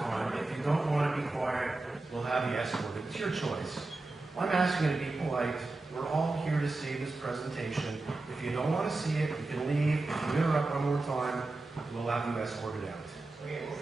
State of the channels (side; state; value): left; quieter; 3.1 dB